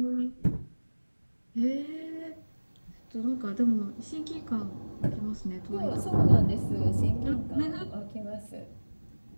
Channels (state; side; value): inverted; both; correlation -1.00